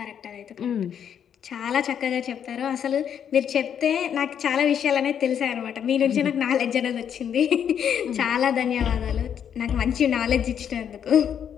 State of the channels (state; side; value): quieter; right; 8.6 dB